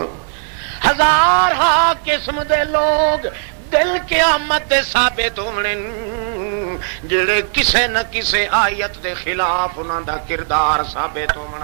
ہزار ہاں قسم دے لوگ دل قیامت دے ثابت ہونے جڑے کسے نہ کسے آیت دے خلاف انہاں دا کردار ثابت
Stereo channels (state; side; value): silent; left; 59 dB below the other